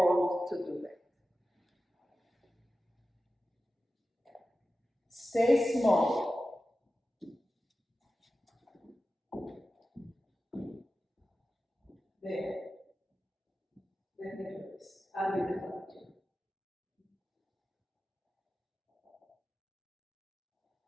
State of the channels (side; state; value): both; normal; correlation 0.94